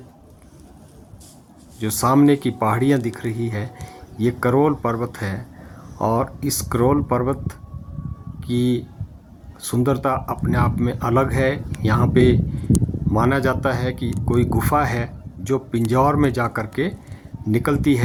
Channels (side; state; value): both; identical; correlation 1.00